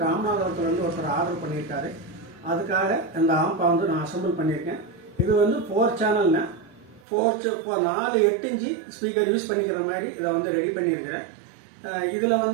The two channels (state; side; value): drops out; left; at 7.0 s